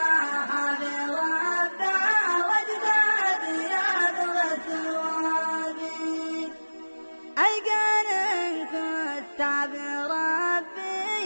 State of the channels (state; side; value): inverted; both; correlation -1.00